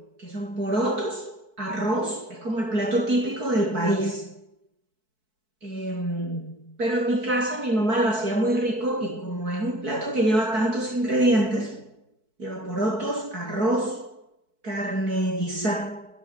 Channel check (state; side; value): late; left; 4.6 ms